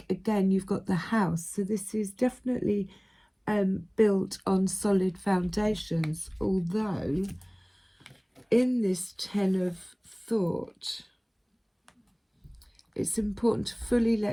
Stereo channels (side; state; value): both; identical; correlation 1.00